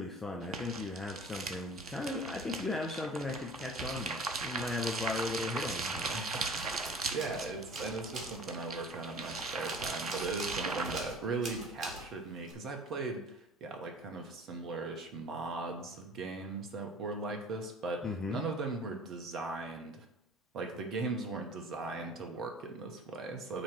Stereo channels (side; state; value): both; normal; correlation 0.45